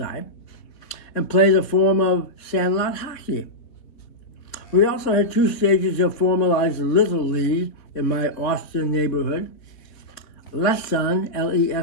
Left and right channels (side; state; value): right; late; 3.7 ms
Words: and played a form of sandlot hockey. We also had two stages of formalized Little League in my Austin neighborhood. Leson,